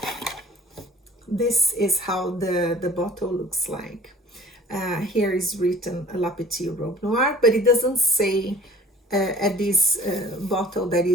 This is how the bottle looks like. Here is written La Petite Robe Noire, but it doesn't say at this bottle that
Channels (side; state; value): both; normal; correlation 0.49